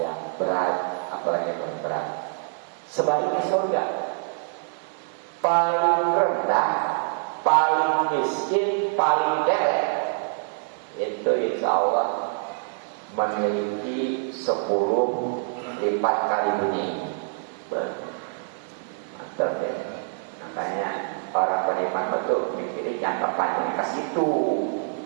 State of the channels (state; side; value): silent; left; digital silence